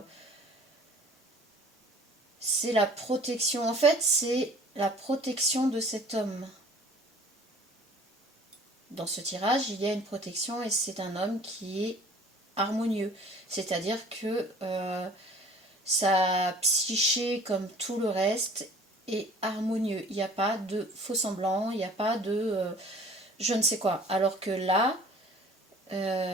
la protection. En fait, c'est la protection de cet homme. Dans ce tirage, il y a une protection et c'est un homme qui est harmonieux. C'est-à-dire que sa psyché, comme tout le reste, est harmonieux. Il n'y a pas de faux semblant, il n'y a pas de je ne sais quoi. Alors que là,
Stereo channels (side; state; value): both; normal; correlation 0.49